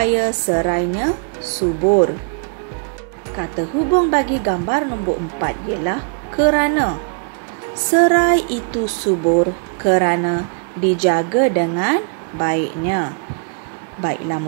serainya subur. Kata hubung bagi gambar nombor 4 ialah kerana. Serai itu subur kerana dijaga dengan baiknya. Baiklah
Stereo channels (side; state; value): left; quieter; 39.6 dB